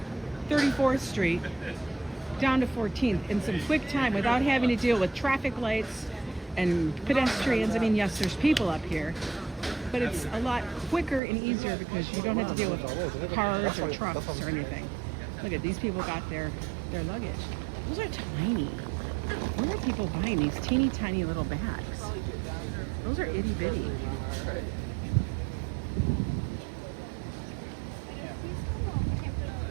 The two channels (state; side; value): drops out; left; at 11.2 s